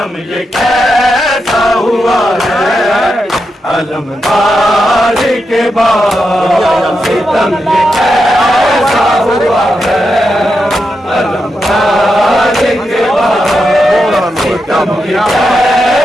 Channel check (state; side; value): normal; both; correlation 0.86